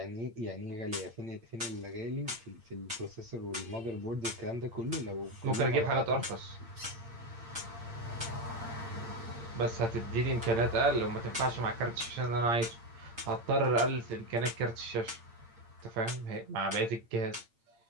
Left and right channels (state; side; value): late; left; 8.8 ms